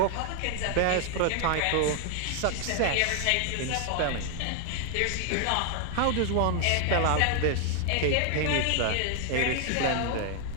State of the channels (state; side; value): different; both; correlation 0.00